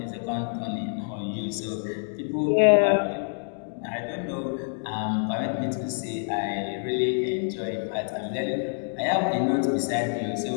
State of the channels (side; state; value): right; silent; digital silence